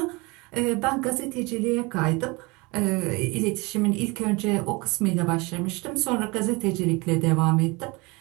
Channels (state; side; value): quieter; left; 25.9 dB